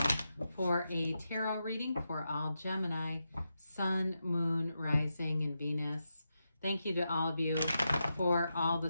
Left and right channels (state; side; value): inverted; both; correlation -0.87